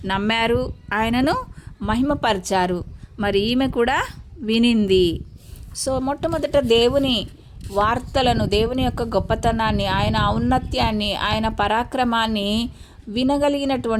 నమ్మారు, ఆయనను మహిమపరిచారు. మరి ఈమె కూడా వినింది. సో మొట్టమొదట దేవుని వార్తలను, దేవుని యొక్క గొప్పతనాన్ని, ఆయన ఔన్నత్యాన్ని, ఆయన పరాక్రమాన్ని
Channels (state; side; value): identical; both; correlation 1.00